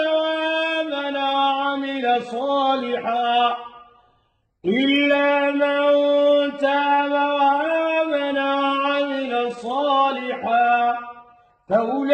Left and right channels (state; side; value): identical; both; correlation 1.00